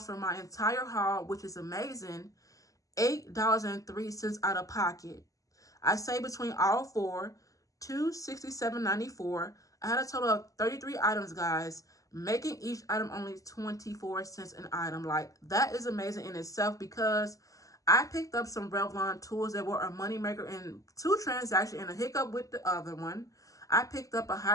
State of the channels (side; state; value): right; late; 0.16 ms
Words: for my entire haul, which is amazing, $8.03 out of pocket. I say between all four, $267.94. I had a total of 33 items, guys, making each item only 24 cents an item. Like, that is amazing in itself because I picked up some Revlon tools that were a moneymaker in 2 transactions and a hiccup with the other one. I picked up a